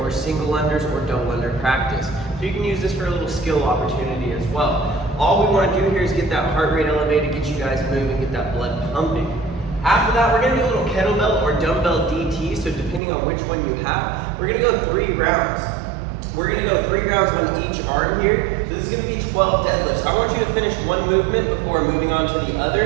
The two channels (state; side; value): drops out; left; at 13.0 s